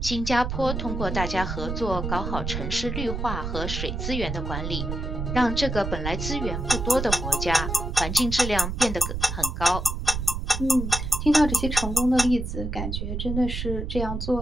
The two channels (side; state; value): right; noise; rumble, 4 dB below the sound